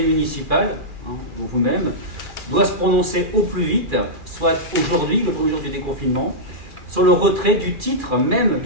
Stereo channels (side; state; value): left; late; 2.4 ms